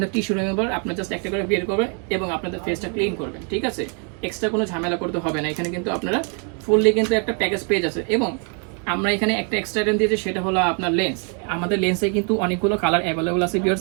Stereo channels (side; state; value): left; quieter; 39.9 dB